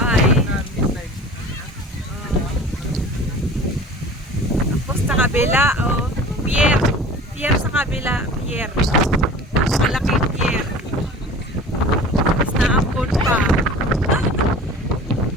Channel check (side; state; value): both; normal; correlation 0.41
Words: Tapos sa kabila, pier. Pier sa kabila, pier. Malaking pier. Tapos naambon pa.